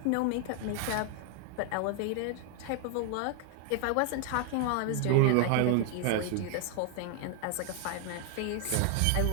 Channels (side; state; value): both; different; correlation 0.00